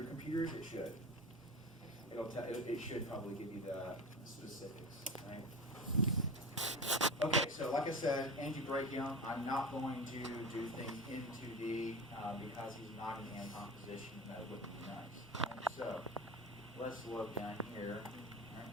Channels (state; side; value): normal; both; correlation 0.30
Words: computers, it should. It should probably give you the specifics, right? Okay, so like I said, antebrachium, I'm not going to do things into the, because he's not in Anton position, that wouldn't be nice. Right? So let's look down here.